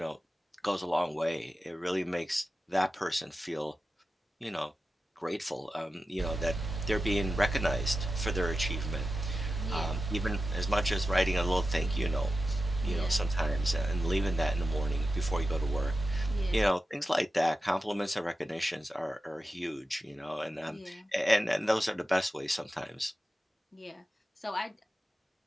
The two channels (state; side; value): normal; both; correlation 0.92